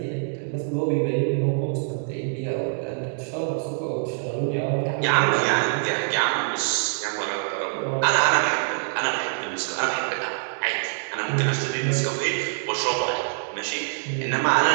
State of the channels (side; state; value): left; silent; digital silence